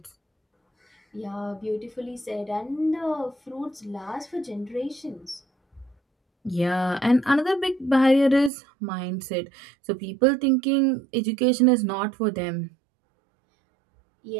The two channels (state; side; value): drops out; left; at 8.5 s